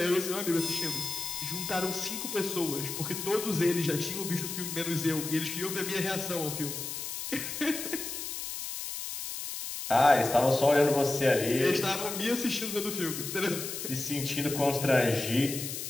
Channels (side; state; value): left; noise; hiss, 6 dB below the sound